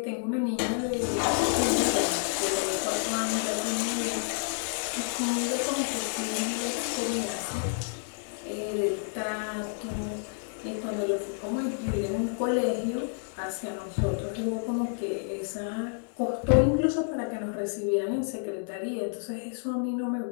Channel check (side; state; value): right; silent; 58 dB below the other